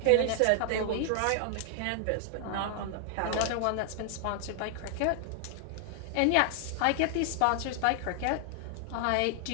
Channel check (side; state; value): both; different; correlation 0.00